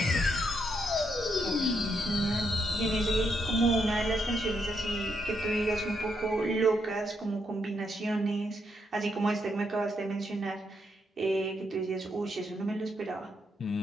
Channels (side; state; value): both; normal; correlation 0.78